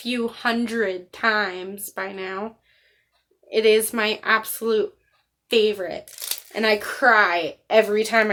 hundred times by now. It is my absolute favorite. And I cry every time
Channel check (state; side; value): identical; both; correlation 1.00